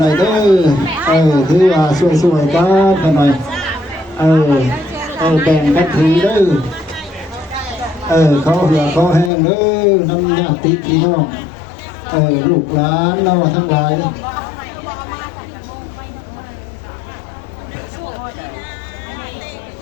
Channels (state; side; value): drops out; right; at 9.3 s